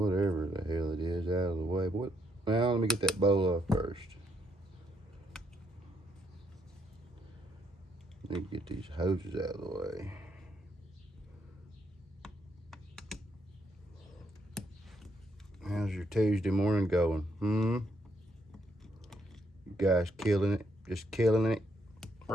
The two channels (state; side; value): normal; both; correlation 0.74